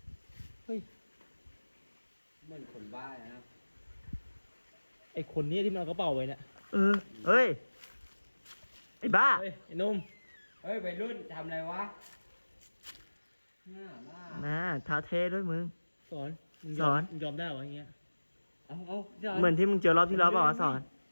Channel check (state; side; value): inverted; both; correlation -1.00